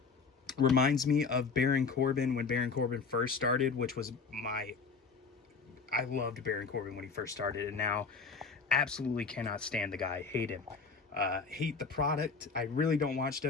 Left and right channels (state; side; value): quieter; right; 4.9 dB